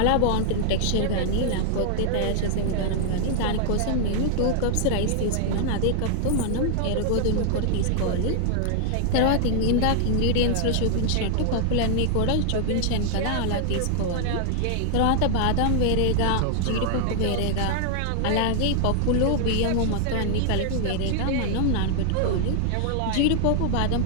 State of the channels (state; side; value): different; both; correlation 0.00